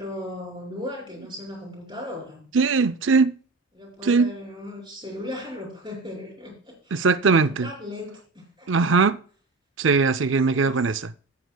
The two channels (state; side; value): quieter; left; 3.9 dB